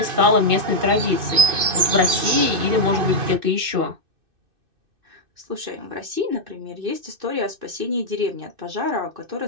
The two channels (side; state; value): left; late; 2.6 ms